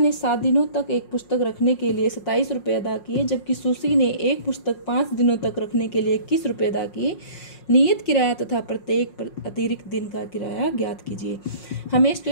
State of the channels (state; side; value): late; right; 5.5 ms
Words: 7 दिनों तक एक पुस्तक रखने के लिए 27 रुपये अदा किए, जबकि सुसी ने एक पुस्तक 5 दिनों तक रखने के लिए 21 रुपये अदा किए। नियत किराया तथा प्रत्येक अतिरिक्त दिन का किराया ज्ञात कीजिए। हमें इस